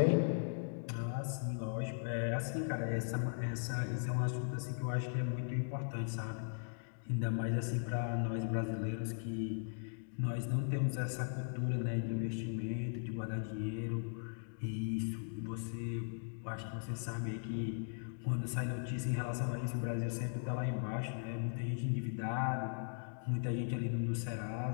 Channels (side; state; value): right; silent; digital silence